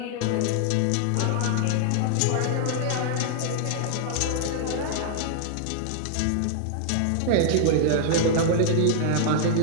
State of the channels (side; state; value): both; different; correlation 0.00